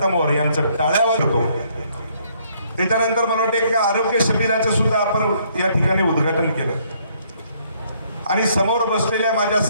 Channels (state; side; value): inverted; both; correlation -0.67